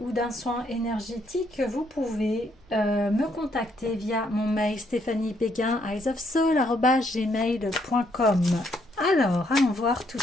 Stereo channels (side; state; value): both; normal; correlation 0.72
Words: ou d'un soin énergétique, vous pouvez me contacter via mon mail stéphaniebeguin@gmail.com. Alors, allons voir tout de